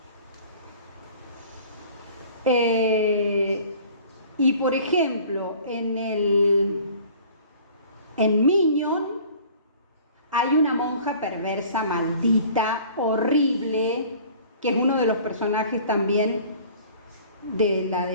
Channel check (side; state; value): both; inverted; correlation -0.48